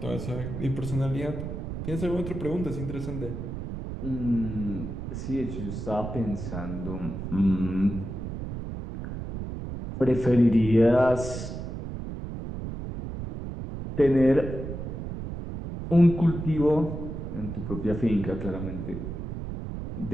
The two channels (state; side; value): noise; right; rumble, 6 dB below the sound